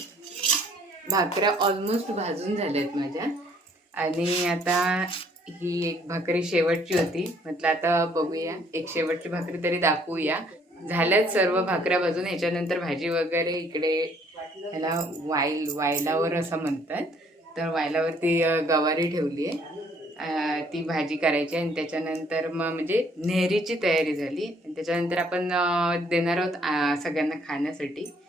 भाकऱ्या ऑलमोस्ट भाजून झाल्यात माझ्या. आणि आता ही एक भाकरी शेवटची होती, म्हटलं आता बघूया एक शेवटची भाकरी तरी दाखवूया. झाल्यात सर्व भाकऱ्या भाजून. ह्याच्यानंतर भाजी वगैरे इकडे ह्याला वायलावर असं म्हणतात, तर वायलावरती गवारी ठेवली आहे, ती भाजी करायची. आणि त्याच्यानंतर मग म्हणजे नेहरीची तयारी झाली. आणि त्याच्यानंतर आपण देणार आहोत सगळ्यांना खाण्यासाठी.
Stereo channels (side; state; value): both; normal; correlation 0.62